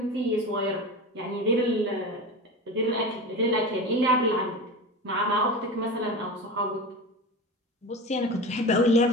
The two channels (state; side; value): normal; both; correlation 0.27